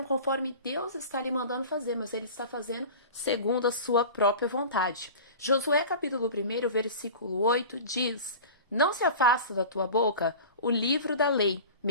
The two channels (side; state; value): both; inverted; correlation -0.36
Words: conforme Deus está lhe mandando fazer, mas ele está fazendo segundo a sua própria vontade. Josué capítulo 1, versículo 8 diz: Não se afasta da tua boca o livro da lei,